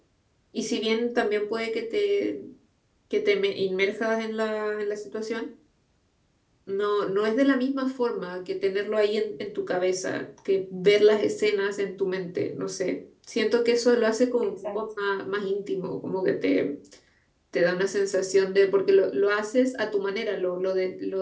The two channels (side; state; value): both; identical; correlation 1.00